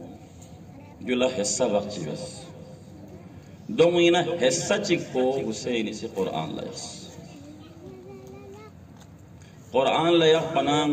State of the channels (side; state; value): both; identical; correlation 1.00